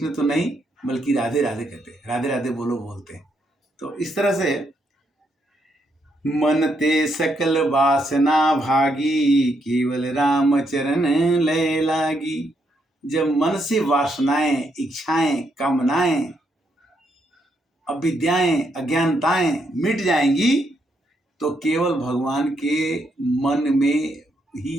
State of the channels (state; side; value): normal; both; correlation 0.77